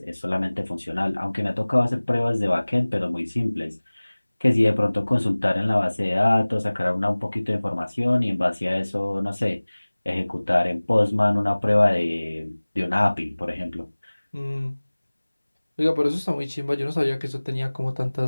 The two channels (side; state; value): both; inverted; correlation -1.00